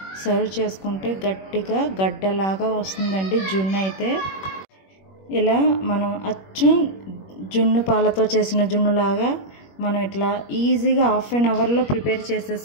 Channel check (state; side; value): late; right; 21 ms